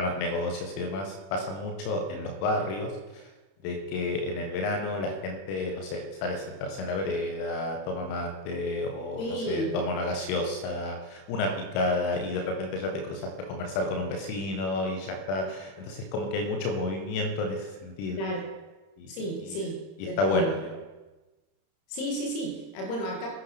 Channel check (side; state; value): right; late; 31 ms